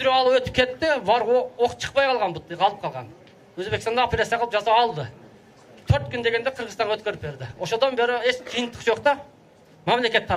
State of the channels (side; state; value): both; identical; correlation 1.00